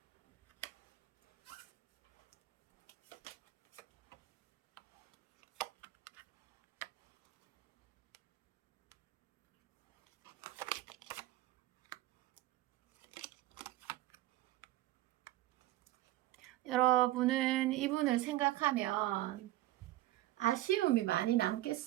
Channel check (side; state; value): left; quieter; 16.2 dB